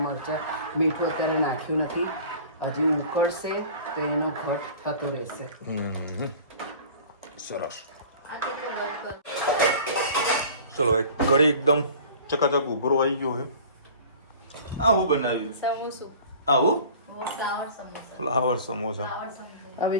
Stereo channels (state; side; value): inverted; both; correlation -0.44